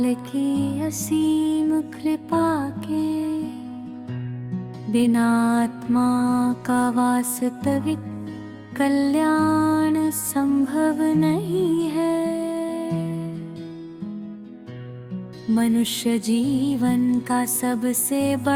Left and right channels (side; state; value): both; identical; correlation 1.00